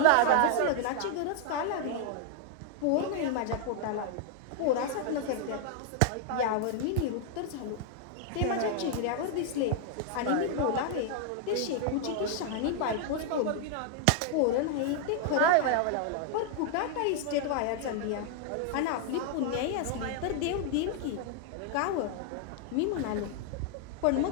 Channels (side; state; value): both; different; correlation 0.00